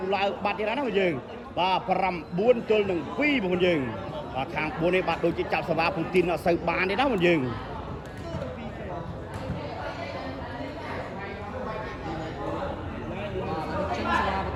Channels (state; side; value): identical; both; correlation 1.00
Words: ឡើងបាត់ទៀតហើយណាបងយើងបាទ9ទល់នឹង2បងប្អូនយើងបាទខាង4នេះបាទដូចជាចាប់សេវាពូទីនអត់សូវបានទេណាបងយើង